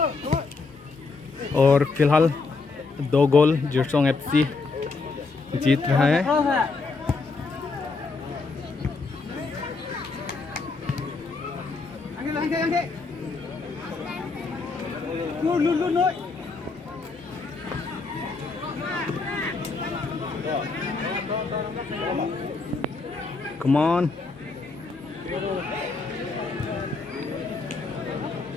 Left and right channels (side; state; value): right; quieter; 4.0 dB